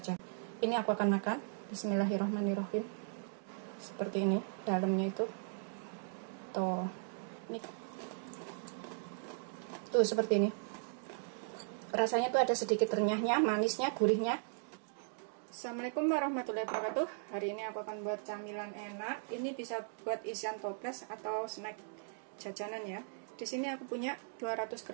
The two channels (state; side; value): silent; left; digital silence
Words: Ini aku akan makan. Bismillahirrahmanirrahim. Seperti ini dalamnya itu. Tuh. Ini. Tuh seperti ini. Rasanya tuh ada sedikit renyahnya, manisnya, gurihnya. Assalamualaikum warahmatullahi wabarakatuh. Hari ini aku akan buat camilan enak. Ini bisa buat isian toples atau snack jajanan ya. Di sini aku punya 200